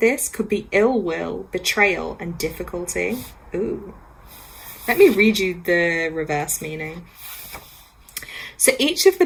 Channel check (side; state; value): both; identical; correlation 1.00